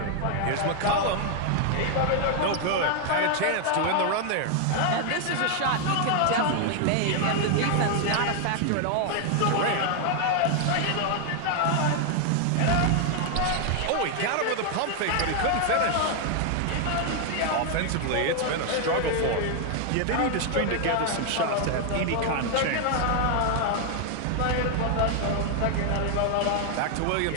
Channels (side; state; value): both; different; correlation 0.00